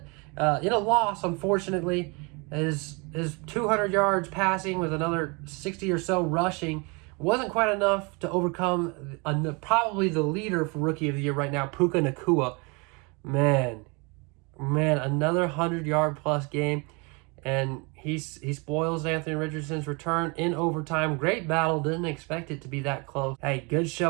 In a loss, unfortunately, his 200 yards passing with another 60 or so rushing wasn't quite enough to overcome probably the leader for Rookie of the Year right now, Puka Nacua. Man, another 100-yard plus game. And he spoils Anthony Richardson's return in overtime. Great battle. Didn't expect it to be that close. Hey, good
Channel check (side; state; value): left; quieter; 29.9 dB